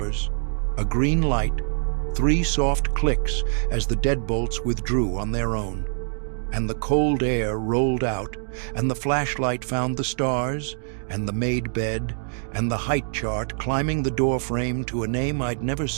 a green light, 3 soft clicks as the deadbolts withdrew on their own. And the cold air rolled out, and the flashlight found the stars, and the made bed, and the height chart climbing the doorframe to a name I'd never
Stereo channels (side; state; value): left; silent; 62 dB below the other